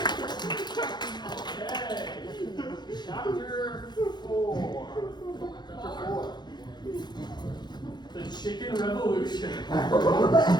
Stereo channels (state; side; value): late; right; 0.21 ms